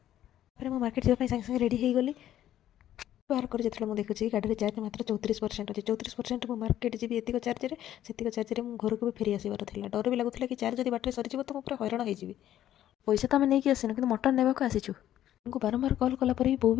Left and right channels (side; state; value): right; quieter; 12.0 dB